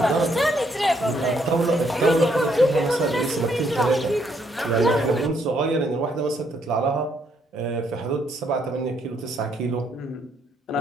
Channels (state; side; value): normal; both; correlation 0.72